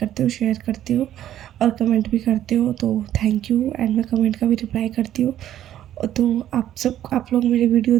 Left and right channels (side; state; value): left; quieter; 11.8 dB